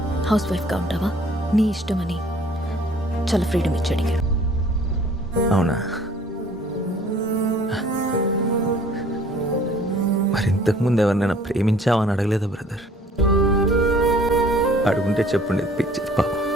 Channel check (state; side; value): normal; both; correlation 0.54